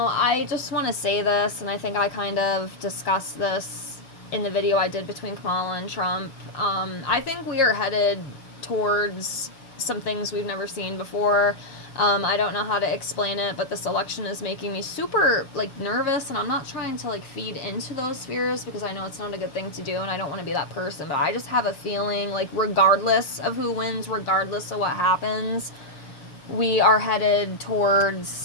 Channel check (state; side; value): late; right; 6.9 ms